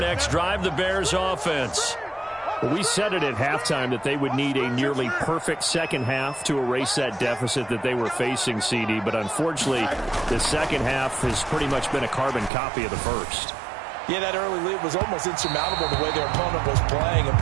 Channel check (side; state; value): left; drops out; at 12.5 s